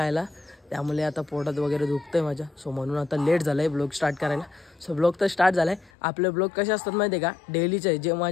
त्यामुळे आता पोटात वगैरे दुखतंय माझ्या। सो म्हणून आता लेट झालंय ब्लॉग स्टार्ट करायला। सो ब्लॉग तर स्टार्ट झालाय। आपले ब्लॉग कसे असतात माहिती आहे का? डेलीचे, जे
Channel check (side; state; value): right; drops out; at 5.9 s